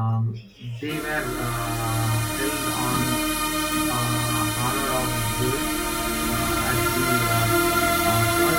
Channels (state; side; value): identical; both; correlation 1.00